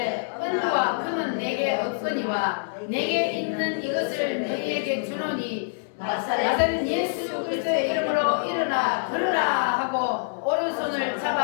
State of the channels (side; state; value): right; silent; 61 dB below the other